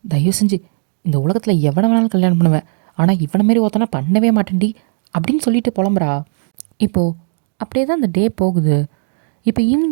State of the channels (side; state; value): left; silent; 68 dB below the other